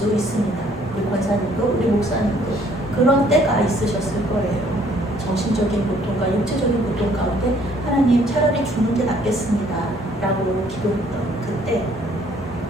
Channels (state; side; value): normal; both; correlation 0.62